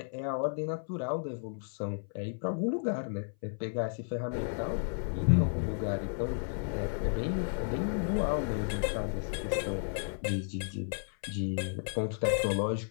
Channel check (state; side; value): silent; right; 56 dB below the other